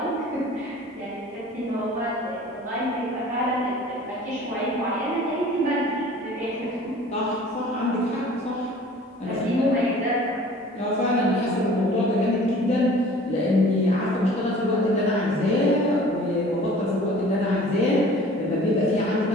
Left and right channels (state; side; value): normal; both; correlation 0.47